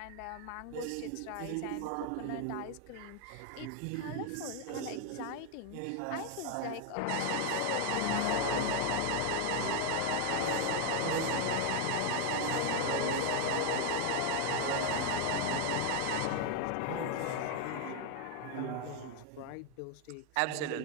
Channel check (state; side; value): different; both; correlation 0.01